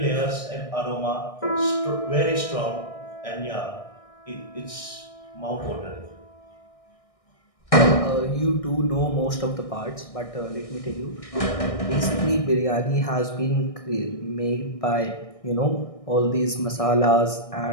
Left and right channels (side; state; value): right; late; 1.6 ms